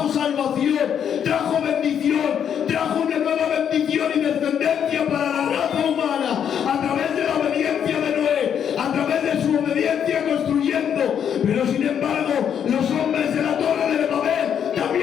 salvación, trajo bendición, trajo una nueva bendición y descendencia para la raza humana a través de la obediencia de Noé, a través de su obediencia construyendo. Pero sin embargo, los hombres de la Torre de Babel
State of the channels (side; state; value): right; quieter; 8.5 dB